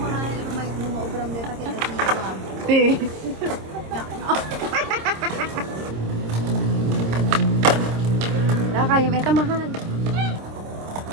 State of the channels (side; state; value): left; late; 26 ms